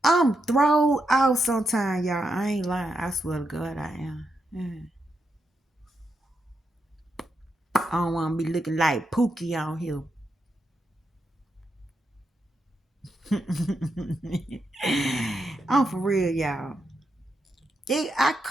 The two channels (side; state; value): both; normal; correlation 0.84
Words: I'm thrown out sometimes, y'all. I ain't lying. I swear to God, I am. I don't want to be looking like Pookie on here. I'm for real, y'all. I